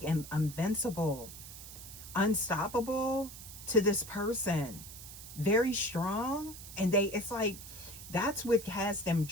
invincible, unstoppable to this person. Very strong. And it's like, that's what has them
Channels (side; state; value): right; noise; hiss, 13 dB below the sound